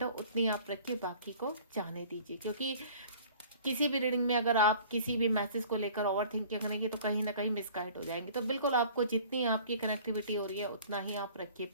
हो उतनी आप रखिए, बाकी को जाने दीजिए। क्योंकि किसी भी रीडिंग में अगर आप किसी भी मैसेज को लेकर ओवर थिंकिंग करेंगे तो कहीं ना कहीं मिसगाइड हो जाएंगे। तो बिल्कुल आपको जितनी आपकी कनेक्टिविटी हो रही है उतना ही आप रखिए।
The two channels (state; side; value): inverted; both; correlation -0.48